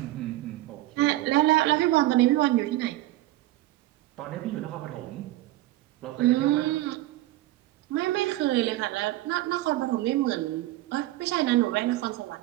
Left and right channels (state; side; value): quieter; left; 16.5 dB